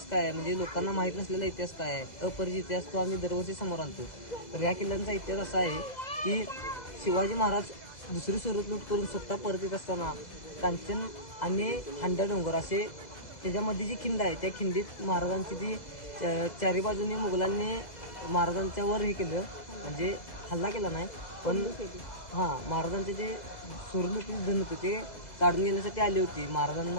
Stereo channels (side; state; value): right; late; 2.0 ms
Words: काय आहे, म्हणजे लोकांना माहीत नसलेला इतिहास काय आहे, अपरिचित इतिहास, तो आम्ही दरवर्षी समोर आणतो. तर ह्या किल्ल्यांचा इतिहास असा आहे की शिवाजी महाराज दुसरी सुरत लूट करून स्वतः परत येत असताना कांचन आणि हांडा डोंगर असे त्याच्यामध्ये जी खिंड आहे त्या खिंडीत महाराजांची ती चारी बाजूने मुघलांनी महाराजांच्या वर हे केलं, म्हणजे हल्ला केला नाही पण महाराजांचे जे सुरलुटी धन होते ते काढून घेण्यासाठी आले होते,